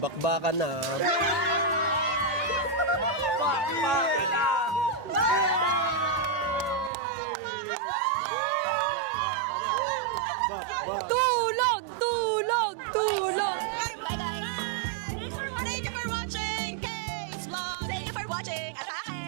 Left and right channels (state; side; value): drops out; left; at 6.9 s